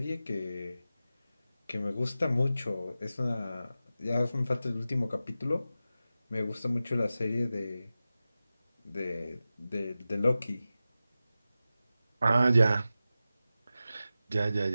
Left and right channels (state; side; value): inverted; both; correlation -0.94